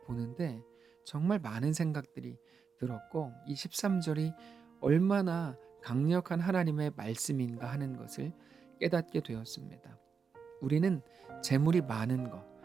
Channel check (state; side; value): quieter; left; 5.8 dB